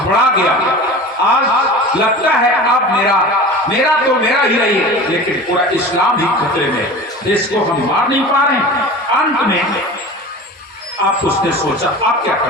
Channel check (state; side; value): normal; both; correlation 0.35